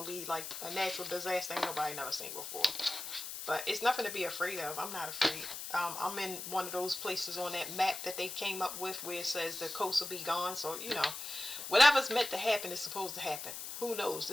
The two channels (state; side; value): noise; left; hiss, 7 dB below the sound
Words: to be like a natural disaster ain't nobody never seen before. But it's nothing to be afraid of. I'm not afraid. I'm in one of those places on that map that they came up with where it says the coast will be gone. So, whatever's meant to happen is supposed to happen. Who knows?